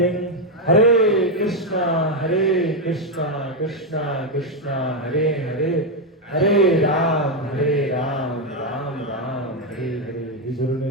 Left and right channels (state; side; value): normal; both; correlation 0.04